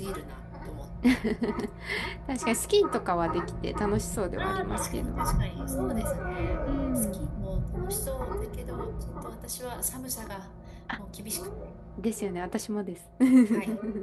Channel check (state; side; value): identical; both; correlation 1.00